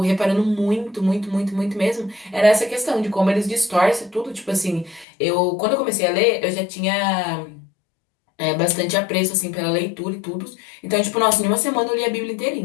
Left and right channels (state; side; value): drops out; right; at 5.1 s